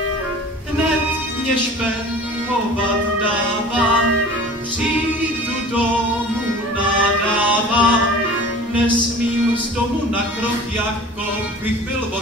Hned mě špehovat dává, přijdu domů nadává. Nesmím z domu na krok, jako bych byl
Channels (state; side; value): normal; both; correlation 0.42